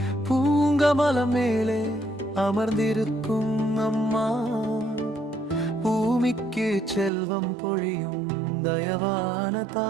பூங்கமலம் மேலே அமர்ந்திருக்கும் அம்மா. பூமிக்கு செல்வம் பொழியும் தயவான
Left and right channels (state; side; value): drops out; left; at 7.1 s